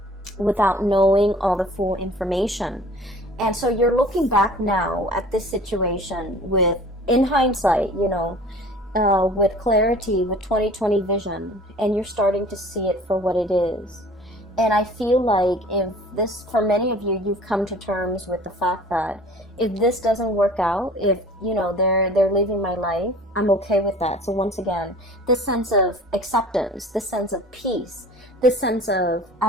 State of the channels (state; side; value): normal; both; correlation 0.46